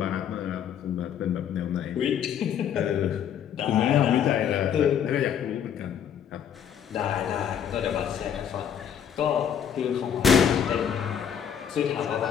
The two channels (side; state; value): right; quieter; 8.6 dB